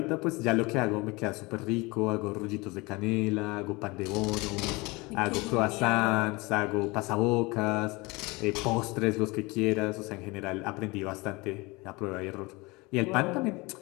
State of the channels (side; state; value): right; quieter; 24.6 dB